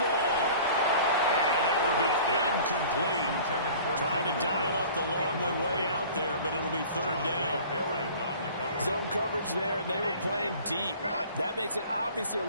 And that will be incomplete. Trying to dial up the long one way out there, but it'll be 3rd down. Zone coverage there, and they were playing deep. That makes it obviously a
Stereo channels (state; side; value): inverted; both; correlation -0.45